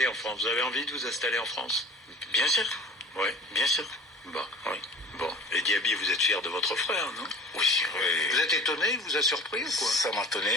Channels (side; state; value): both; normal; correlation 0.44